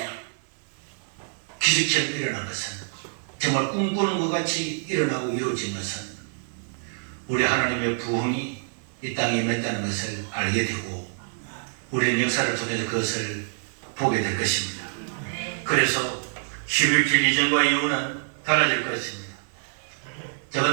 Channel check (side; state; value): left; silent; 58 dB below the other